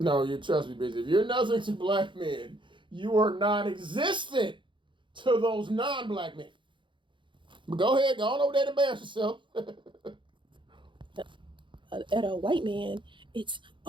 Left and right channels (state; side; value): late; left; 0.23 ms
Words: No, you trust me, bitch. If you're nothing to black men, you are non-existent to those non-black men. But go ahead, go on over there and embarrass yourself. at a white man, it's